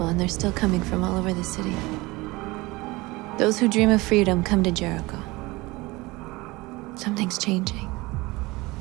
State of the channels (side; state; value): left; quieter; 22.1 dB